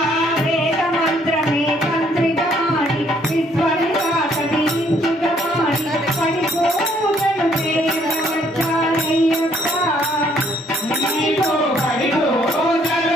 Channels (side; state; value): both; normal; correlation 0.66